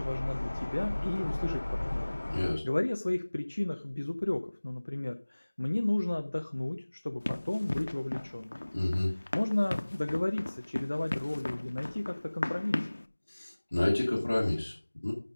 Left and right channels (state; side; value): inverted; both; correlation -1.00